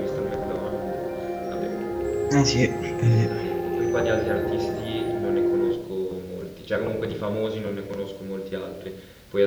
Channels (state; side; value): identical; both; correlation 1.00